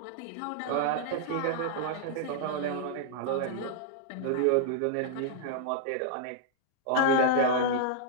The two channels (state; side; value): different; both; correlation -0.01